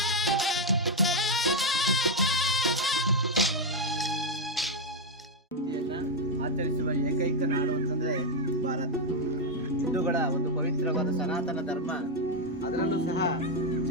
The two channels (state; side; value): normal; both; correlation 0.02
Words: ಆಚರಿಸುವ ಏಕೈಕ ನಾಡು ಅಂತಂದ್ರೆ ಭಾರತ. ಹಿಂದೂಗಳ ಒಂದು ಪವಿತ್ರವಾದ ಸನಾತನ ಧರ್ಮ, ಅದರಲ್ಲೂ ಸಹ